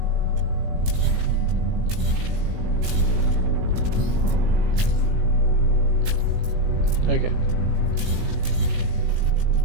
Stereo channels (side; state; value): left; late; 18 ms